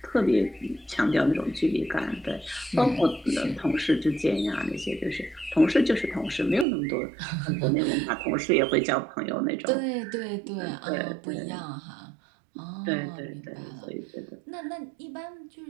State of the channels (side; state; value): left; drops out; at 6.7 s